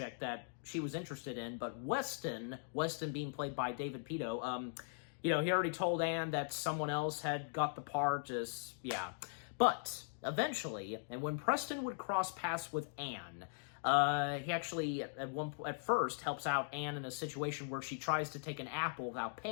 that she was interested in, but Weston being played by David Pito, he already told Anne that someone else had got the part, But eventually, and when Preston would cross paths with Anne, he actually, at first, helps out Anne in a situation where she tries to take an apple without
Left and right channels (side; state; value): right; silent; digital silence